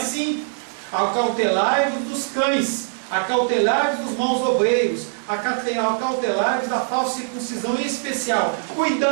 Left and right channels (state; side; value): silent; left; digital silence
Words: Acautelai-vos dos cães, acautelai-vos dos maus obreiros, acautelai-vos da falsa circuncisão, em especial.